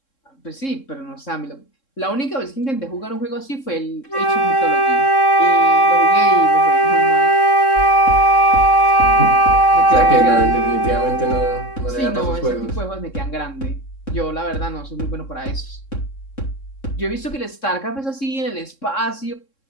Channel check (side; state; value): right; late; 3.7 ms